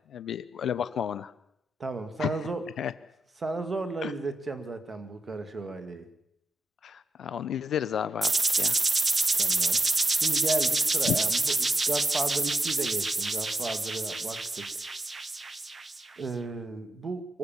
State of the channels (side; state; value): both; normal; correlation 0.85